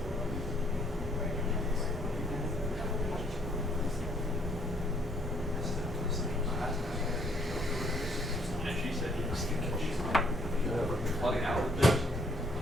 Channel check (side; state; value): both; normal; correlation 0.66